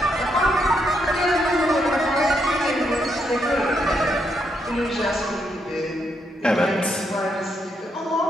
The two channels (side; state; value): both; normal; correlation 0.78